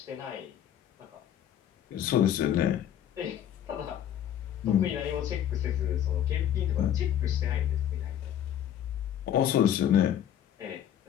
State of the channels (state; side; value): quieter; right; 10.4 dB